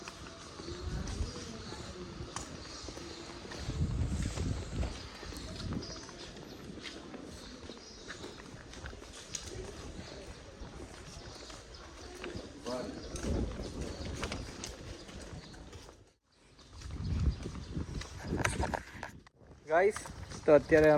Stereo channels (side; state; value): both; identical; correlation 1.00